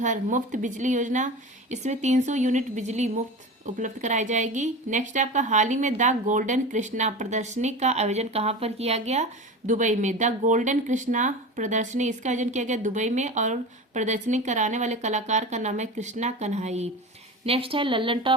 मुफ्त बिजली योजना, इसमें 300 यूनिट बिजली मुफ्त उपलब्ध कराई जाएगी। नेक्स्ट आपका हाल ही में द गोल्डन कृष्णा प्रदर्शनी का आयोजन कहाँ पर किया गया? दुबई में। द गोल्डन कृष्णा प्रदर्शनी इसका आयोजन किया गया दुबई में और प्रदर्शनी कराने वाले कलाकार का नाम है कृष्णा कन्हाई। नेक्स्ट है लल्लन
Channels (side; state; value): both; normal; correlation 0.30